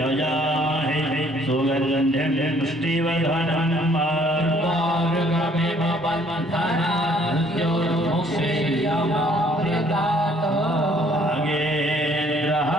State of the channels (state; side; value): normal; both; correlation 0.61